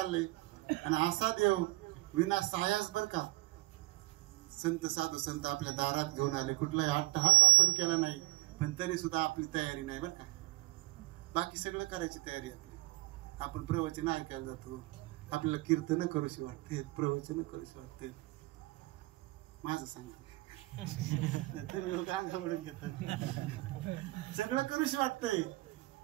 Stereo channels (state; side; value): quieter; left; 20.1 dB